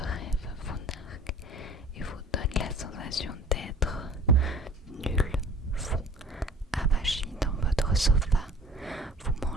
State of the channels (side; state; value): both; normal; correlation 0.47